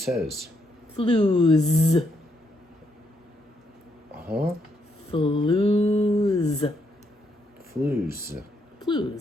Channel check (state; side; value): normal; both; correlation 0.77